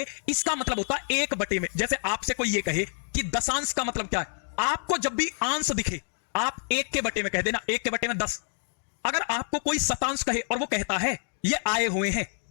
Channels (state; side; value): silent; right; digital silence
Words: इसका मतलब होता है 1/। में जैसे आपसे कोई ये कहे कि दशांश का मतलब क्या है, आपको जब भी अंश दिखे आप 1/, में कह देना, 1/, में 10। अगर आपको कोई शतांश कहे और वो कहता है ये आए हुए हैं,